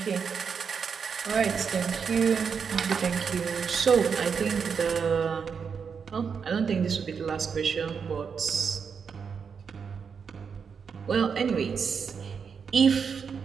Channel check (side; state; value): left; quieter; 6.3 dB